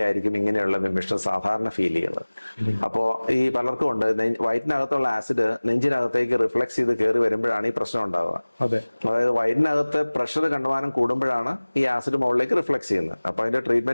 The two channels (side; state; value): both; inverted; correlation -1.00